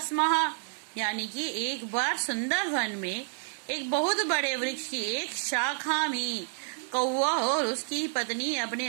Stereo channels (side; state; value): left; silent; 58 dB below the other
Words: यानी कि एक बार सुंदर वन में एक बहुत बड़े वृक्ष की एक शाखा में कौवा और उसकी पत्नी